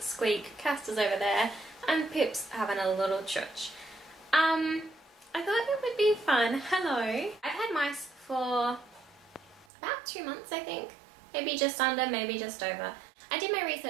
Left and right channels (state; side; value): drops out; left; at 9.7 s